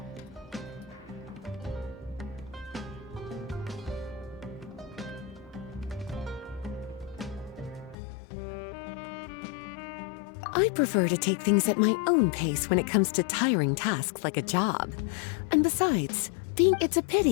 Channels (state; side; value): drops out; right; at 8.0 s